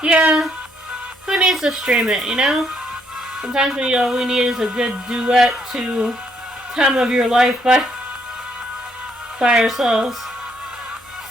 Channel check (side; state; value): both; normal; correlation 0.71